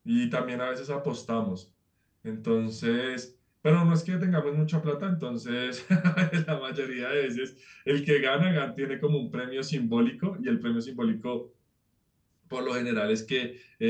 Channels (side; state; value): both; identical; correlation 1.00